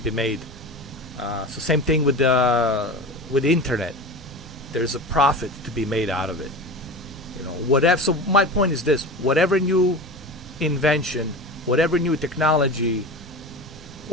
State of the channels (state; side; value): normal; both; correlation 0.30